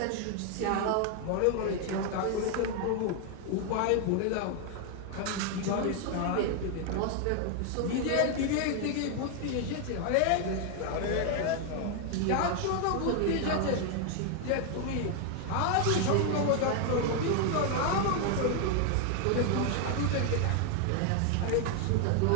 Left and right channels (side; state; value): both; different; correlation 0.01